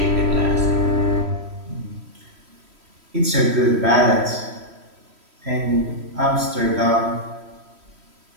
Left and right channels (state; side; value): late; left; 3.1 ms